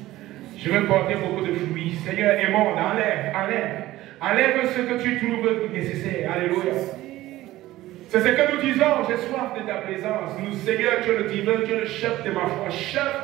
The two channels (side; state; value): left; quieter; 16.2 dB